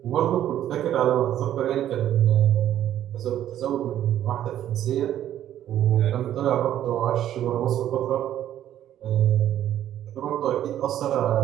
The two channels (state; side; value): quieter; left; 11.6 dB